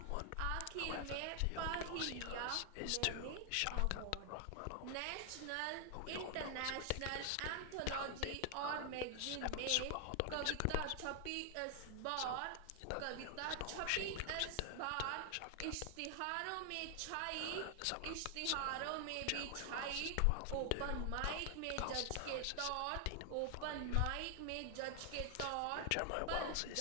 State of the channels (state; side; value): different; both; correlation 0.00